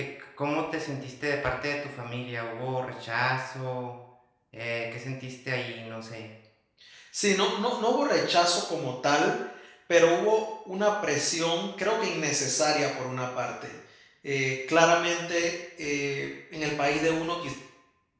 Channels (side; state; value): both; identical; correlation 1.00